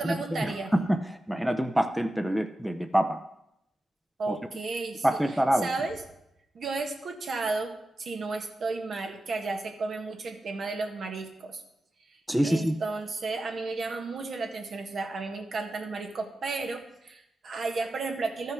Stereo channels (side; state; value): both; normal; correlation 0.92